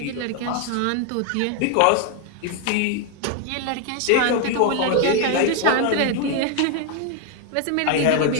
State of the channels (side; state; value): both; different; correlation 0.00